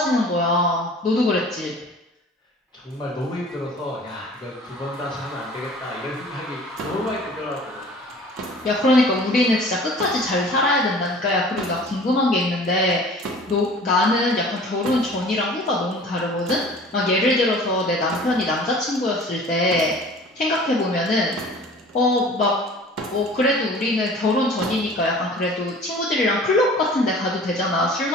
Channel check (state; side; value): normal; both; correlation 0.46